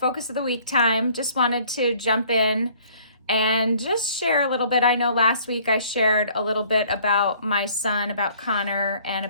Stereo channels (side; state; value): both; inverted; correlation -0.56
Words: of the week time, just wanted to jump in and just share a little bit. I know last week I shared a little bit about my son, about Connor, and